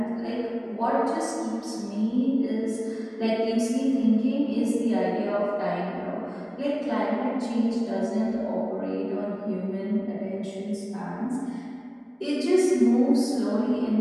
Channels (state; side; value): identical; both; correlation 1.00